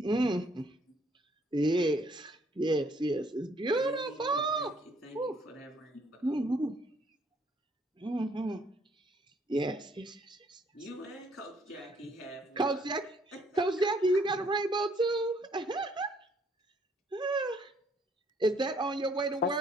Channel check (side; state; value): both; normal; correlation 0.65